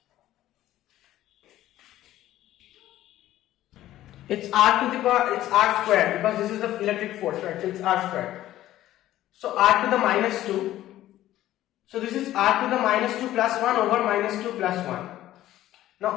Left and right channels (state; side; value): quieter; right; 14.0 dB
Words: It's r to the power, it's r squared because this is the electric force, right? So it's r squared. So r to the minus 2. So this is r to the minus 2 plus 1 over minus 2 plus 1. Now